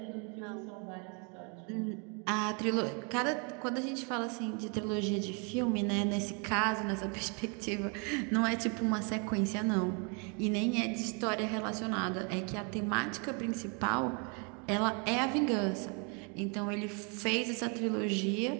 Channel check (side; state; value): left; quieter; 35.2 dB